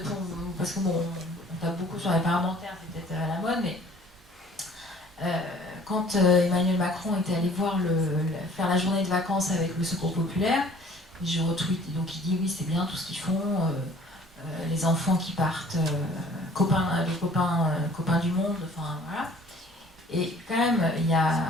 pour... Parce que bon, on tape beaucoup sur les parlementaires, c'est peut-être à la mode, mais... quand Emmanuel Macron était allé faire la journée de vacances avec le Secours populaire, je retweet, donc il dit oui c'est bien tout ce qu'ils font, les enfants qui partent, les copains du monde, enfin voilà. Et quand même, il y a,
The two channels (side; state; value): both; normal; correlation 0.53